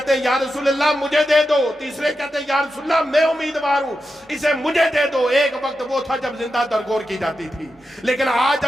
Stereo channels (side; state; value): both; normal; correlation 0.89